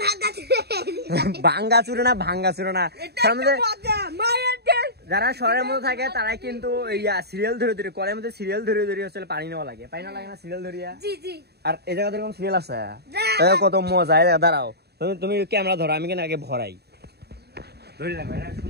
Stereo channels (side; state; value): left; late; 0.47 ms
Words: ভাঙা চুরে। ভাঙ্গা চুরে না, ভাঙ্গা চুরে না। এটা মজা মায়ের দেশ। যারা শহরের মধ্যে থাকে তারাই কিন্তু সিরিয়াল ধরে ধরে কলের মধ্যে সিরিয়াল ধরে ধরে হচ্ছে পানি নেওয়া লাগে, পানি নেওয়া লাগে না সিরিয়াল ধরিয়া? জি জি। আর এই জায়গাতে এরকম সিরিয়াল আছে, কত মজা। দাঁড়াও, তুমি ক্যামেরা ধরো, আমি কেন আগে ভরাই। ধরে রাখো, এটা